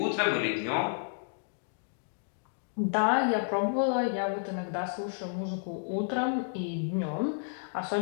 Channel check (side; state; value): right; silent; digital silence